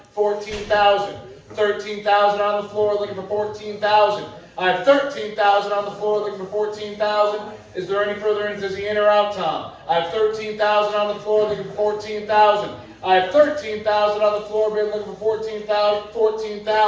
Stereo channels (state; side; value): identical; both; correlation 1.00